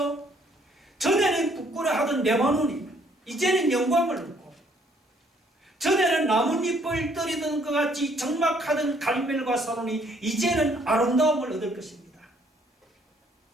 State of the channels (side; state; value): both; normal; correlation 0.65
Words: 전에는 부끄러워하던 레바논이 이제는 영광을 얻고, 전에는 나뭇잎을 떨이던 것 같이 적막하던 갈멜과 사론이 이제는 아름다움을 얻을 것입니다.